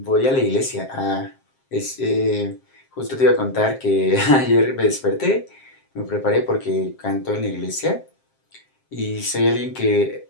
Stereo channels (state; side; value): late; right; 7.5 ms